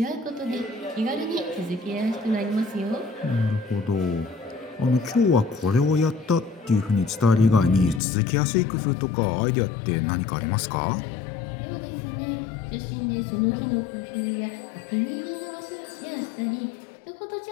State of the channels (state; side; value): drops out; right; at 8.0 s